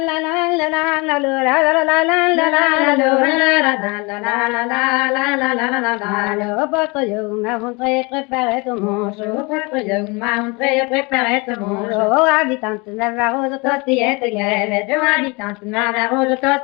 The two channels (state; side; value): quieter; right; 27.8 dB